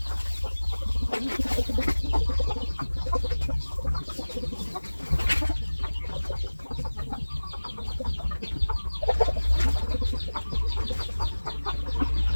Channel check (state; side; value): inverted; both; correlation -1.00